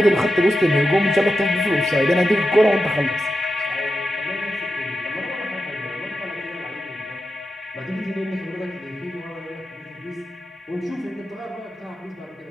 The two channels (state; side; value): normal; both; correlation 0.90